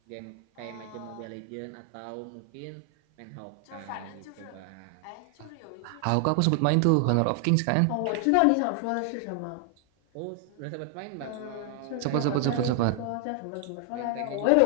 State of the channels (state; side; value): different; both; correlation 0.00